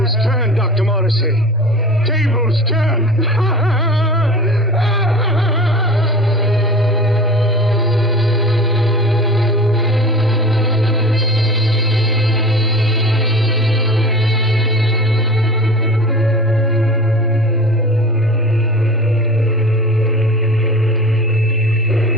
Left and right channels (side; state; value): both; normal; correlation 0.36